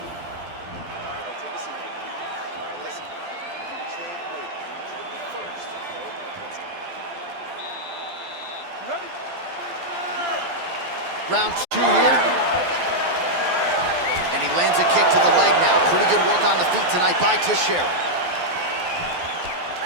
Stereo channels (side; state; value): left; late; 12 ms